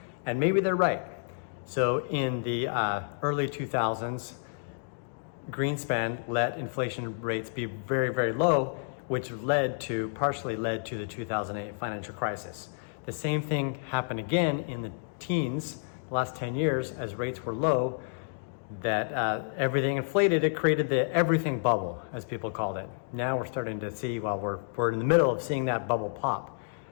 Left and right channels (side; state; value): right; silent; digital silence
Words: And maybe they're right. So in the early 2000s, Greenspan let inflation rates be very, very low, which partially led to the 2008 financial crisis. The same thing happened again in the teens, the last 10 years, as rates were low, that everything inflated. It created the everything bubble, as people called it. Now we're starting to see, we're in the middle of seeing that bubble pop